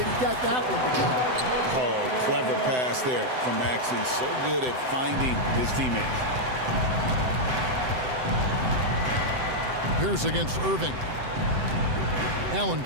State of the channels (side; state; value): left; late; 7.9 ms